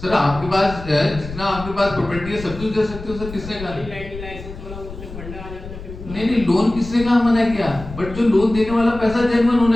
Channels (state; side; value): noise; left; rumble, 12 dB below the sound